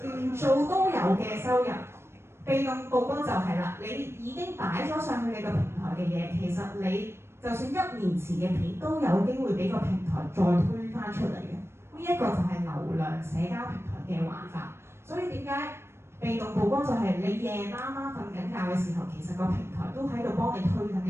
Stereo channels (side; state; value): left; late; 0.12 ms